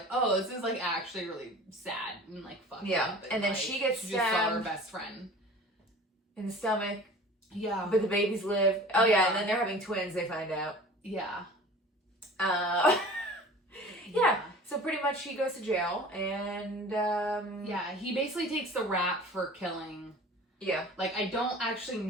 oh, this is like actually really sad and like fucked up. And then like, she gets stabbed. Just saw her best friend in the stomach. Yeah. But the babies live. Oh yeah, and then they're having twins, they find out. Yeah. So pretty much she goes to jail, and he basically takes the rap for killing. Yeah. Like, I don't actually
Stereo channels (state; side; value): normal; both; correlation 0.42